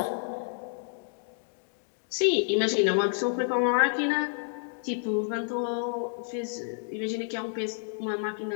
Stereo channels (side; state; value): right; silent; digital silence